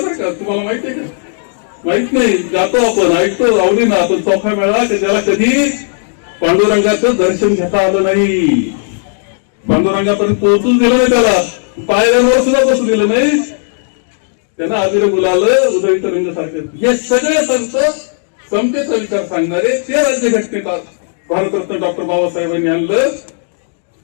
का, तुम्हाला माहिती आहे का? माहित नाही, जातो आपण, ऐकतो आवडीना, पण चोखा मेळा त्याला कधी पांडुरंगाचं दर्शन घेता आलं नाही, पांडुरंगापर्यंत पोहोचून दिलं नाही, त्याला पायऱ्यांवर सुद्धा बसू दिलं नाही, त्यांना अभिर गुलाल उदय तरंग सारखे हे सगळे संत समतेचा विचार सांगणारे ते राज्यघटनेत भारतरत्न डॉक्टर बाबासाहेबांनी आणलं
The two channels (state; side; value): silent; right; digital silence